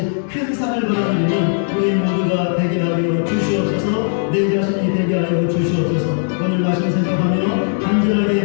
큰 상을 받아들이는 우리 모두가 되게 하여 주시옵소서. 내 자신이 되게 하여 주시옵소서. 오늘 말씀 생각하며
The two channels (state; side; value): silent; right; digital silence